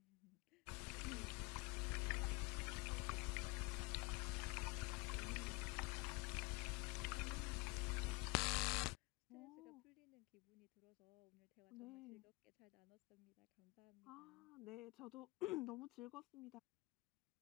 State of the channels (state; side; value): quieter; right; 26.2 dB